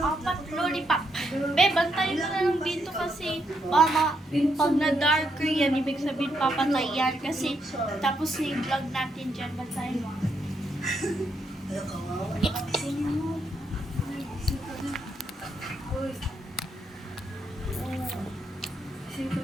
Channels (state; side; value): normal; both; correlation 0.78